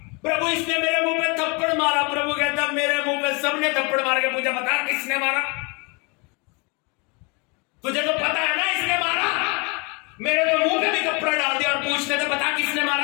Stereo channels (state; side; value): quieter; right; 30.1 dB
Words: प्रभु इसने मेरे मुंह पे थप्पड़ मारा, प्रभु कहता मेरे मुंह पे सबने थप्पड़ मार के पूछा बता किसने मारा। तुझे तो पता है ना इसने मारा, मेरे तो मुंह पे भी कपड़ा डाल दिया और पूछते थे बता किसने